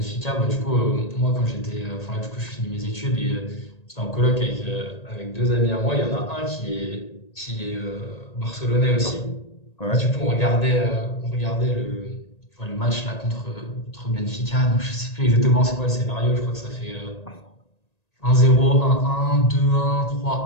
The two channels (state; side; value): late; right; 1.9 ms